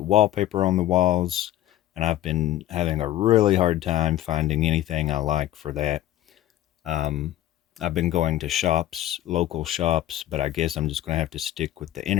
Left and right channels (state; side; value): quieter; right; 13.6 dB